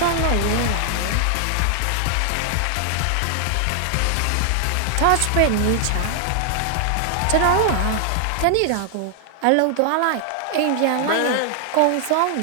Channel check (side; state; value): both; different; correlation 0.00